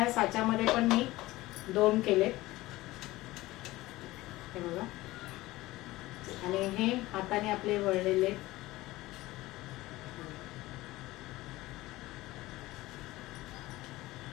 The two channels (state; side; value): quieter; right; 18.4 dB